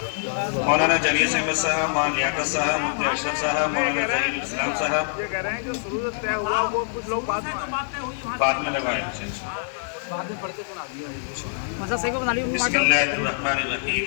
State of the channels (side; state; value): right; silent; 62 dB below the other